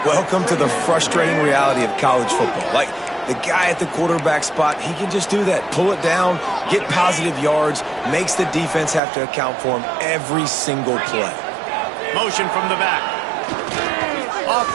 Welcome to the frustrating reality of college football. Like, the guy at the quarterback spot, he can just do that. Pull it down, get positive yards, makes the defense have to account for him every single play. Motion from the back. Off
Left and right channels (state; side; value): drops out; left; at 9.0 s